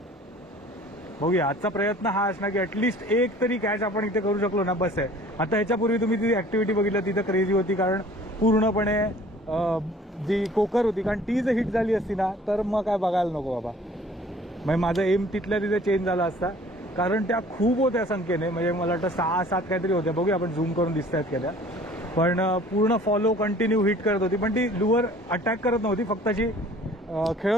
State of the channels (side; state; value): both; normal; correlation 0.51